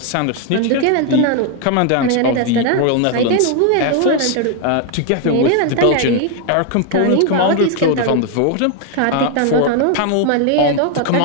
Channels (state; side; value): different; both; correlation 0.01